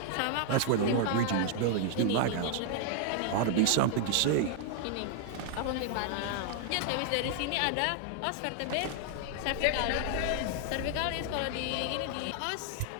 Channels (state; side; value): different; both; correlation 0.00